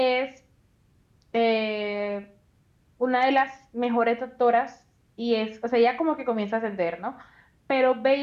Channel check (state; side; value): identical; both; correlation 1.00